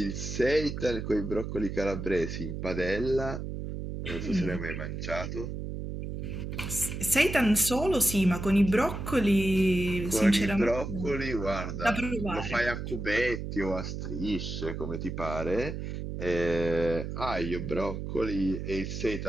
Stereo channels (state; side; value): noise; right; hum, 5 dB below the sound